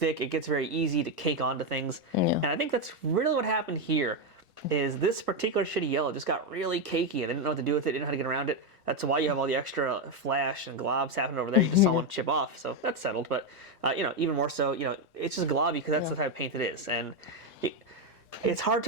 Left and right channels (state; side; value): normal; both; correlation 0.07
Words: it gets very easy to cake onto things, and I think that's really what happened here. Is this particular shitty yellow just got really cakey and they didn't know what to do with it, didn't know how to get around it. That's why you have all the extra flash and globs happening over there. You just saw one chip off, so that's settled. But, you know, even more so, you know, it's just globby because that's the type of paint it is. And it's hard